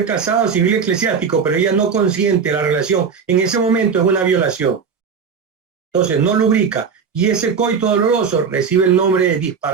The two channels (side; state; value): left; quieter; 6.1 dB